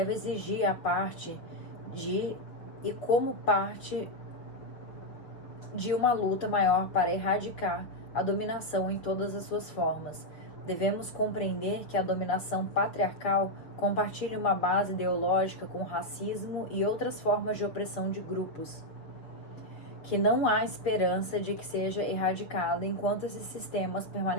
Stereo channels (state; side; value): late; right; 6.3 ms